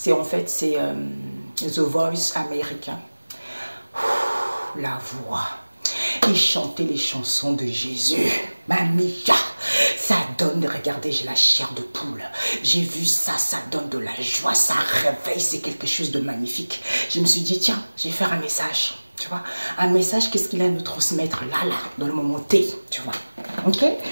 The Voice américain. La voix. Il chantait les chansons de Jésus. Mamia, ça donne, regardez, j'ai la chair de poule. J'ai vu ça, ça donne de la joie, ça réveille, c'est quelque chose de magnifique. Je me suis dit, tiens, je vais faire un message, tu vois. Un message, qu'est-ce qu'il a à nous transmettre là, dans le moment T, tu vois. Ok.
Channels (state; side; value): inverted; both; correlation -1.00